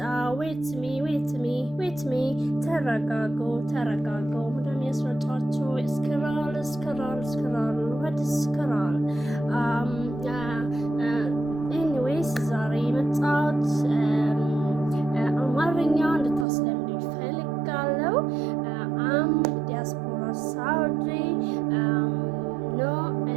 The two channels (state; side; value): drops out; left; at 16.4 s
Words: wait me. ተረጋጉ። ምንድን ነው ያስረጫችሁ? ስክራል what is ስክራል? ኤኒዌይስ ዛሬ የመጣሁት አማርኛ እንድታስለምዱ ይፈልጋለሁ። አም ዲያስፖራ ሳውዲ no